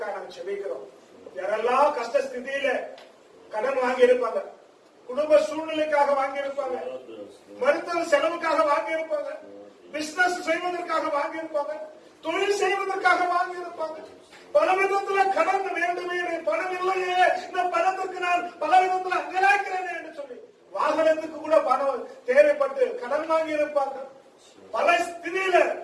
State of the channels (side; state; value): both; identical; correlation 1.00